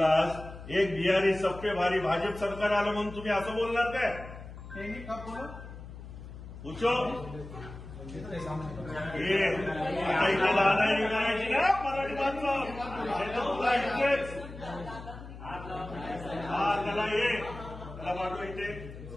एक बिहारी सब पे भारी, भाजप सरकार आलं म्हणून तुम्ही असं बोलणार काय? कब बोला? पूछो आता इथे लहान निघायची ना मराठी माणसं त्याला त्याला पाठव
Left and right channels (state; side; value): noise; left; hum, 13 dB below the sound